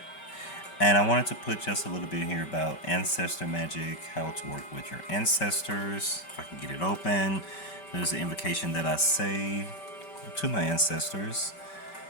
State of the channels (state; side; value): late; right; 5.2 ms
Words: And I wanted to put just a little bit here about ancestor magic, how to work with your ancestors. If I can get it open. There's an invocation that I say to my ancestors.